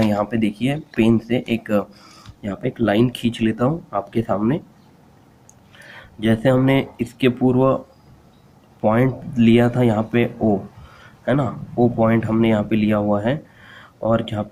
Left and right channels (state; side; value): identical; both; correlation 1.00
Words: यहाँ पे देखिए पेन से यहाँ पे एक लाइन खींच लेता हूँ आपके सामने। जैसे हमने इसके पूर्व पॉइंट लिया था यहाँ पे O, है ना, O पॉइंट हमने यहाँ पे लिया हुआ है, और जहाँ